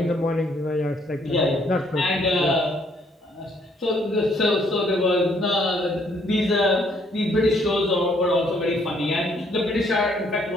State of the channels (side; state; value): both; normal; correlation 0.67